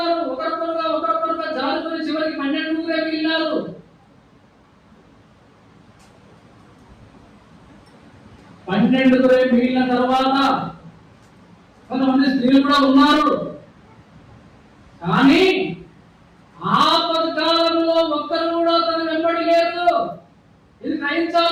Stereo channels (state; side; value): identical; both; correlation 1.00